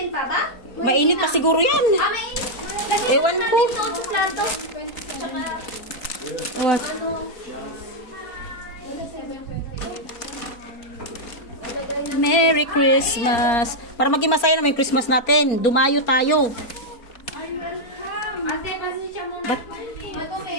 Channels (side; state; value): right; late; 4.3 ms